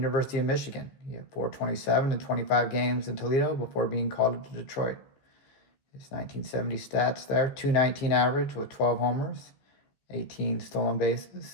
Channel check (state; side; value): late; right; 14 ms